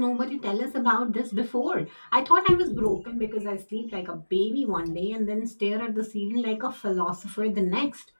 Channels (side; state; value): both; inverted; correlation -1.00